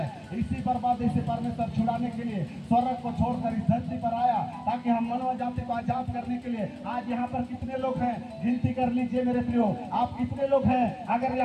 इसी बर्बादी से परमेश्वर छुड़ाने के लिए स्वर्ग को छोड़कर इस धरती पर आया, ताकि हम मानव जाति को आजाद करने के लिए। आज यहाँ पर कितने लोग हैं? गिनती कर लीजिए मेरे प्रियो, आप कितने लोग हैं? अगर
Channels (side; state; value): both; identical; correlation 1.00